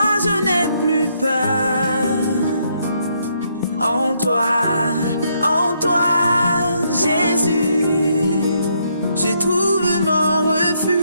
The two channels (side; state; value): both; inverted; correlation -0.74